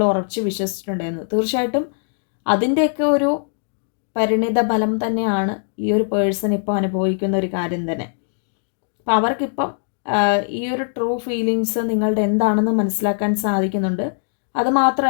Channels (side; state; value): right; silent; digital silence